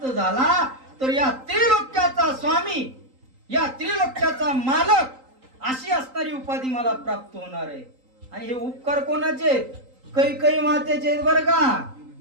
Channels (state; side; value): late; left; 3.9 ms